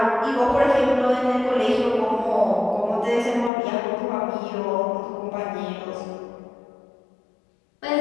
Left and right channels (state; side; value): drops out; right; at 3.5 s